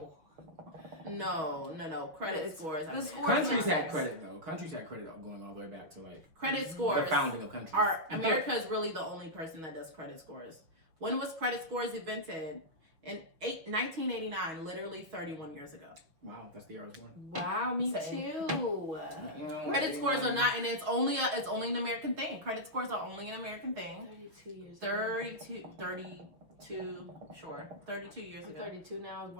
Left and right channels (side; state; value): left; late; 6.1 ms